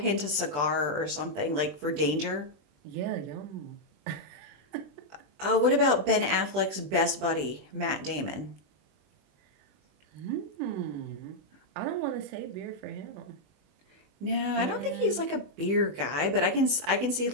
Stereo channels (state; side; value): late; left; 20 ms